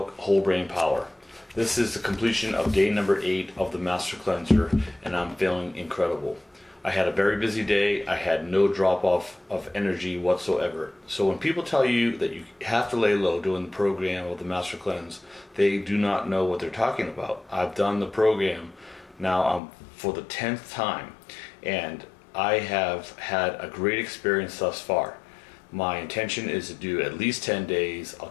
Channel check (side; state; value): right; drops out; at 19.6 s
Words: Whole Brain Power. This is the completion of day number 8 of the Master Cleanser, and I'm feeling incredible. I had a very busy day. I had no drop off of energy whatsoever. So when people tell you that you have to lay low doing the program of the Master Cleanse, they do not know what they're talking about. I've done the program now for the 10th time, and I have had a great experience thus far. My intention is to do at least 10 days. I'll